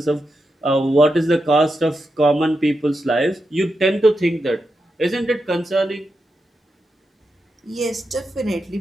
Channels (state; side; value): normal; both; correlation 0.87